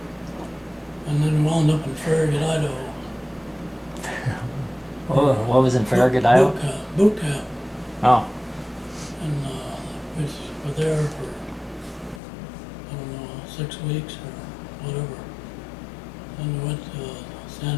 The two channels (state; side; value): drops out; right; at 12.2 s